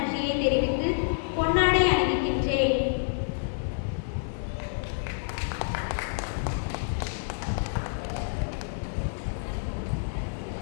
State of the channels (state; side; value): silent; right; 58 dB below the other